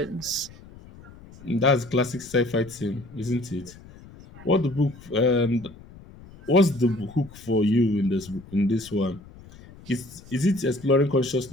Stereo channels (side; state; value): left; noise; rumble, 20 dB below the sound